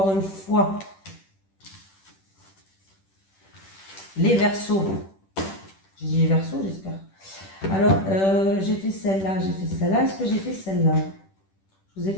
une fois. Les Verseaux. J'ai dit les Verseaux, j'espère. Alors, j'ai fait celle-là, j'ai fait celle-là. Est-ce que j'ai fait celle-là? Je vous ai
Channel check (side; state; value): right; late; 10 ms